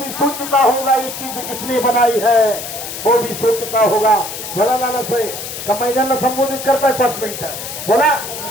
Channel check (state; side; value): noise; left; hiss, 8 dB below the sound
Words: सोचता होगा ये चीज किसने बनाई है, वो भी सोचता होगा. बोला लाला साहेब, का मैदानाला संबोधित करताय 5 मिनिटं बोला.